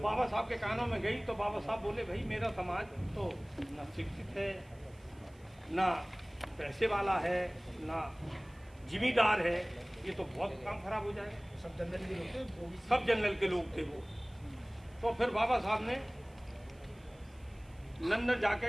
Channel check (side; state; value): right; noise; hiss, 30 dB below the sound